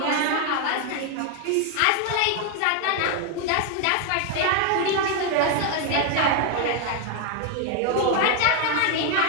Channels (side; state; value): both; different; correlation 0.01